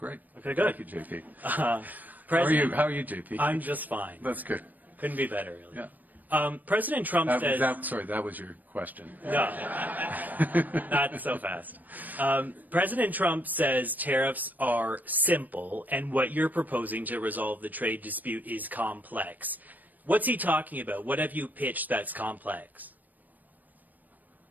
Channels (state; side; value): late; left; 0.084 ms